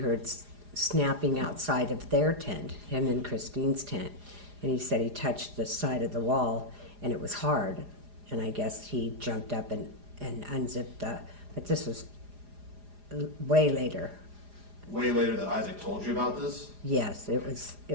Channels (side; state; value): left; late; 4.9 ms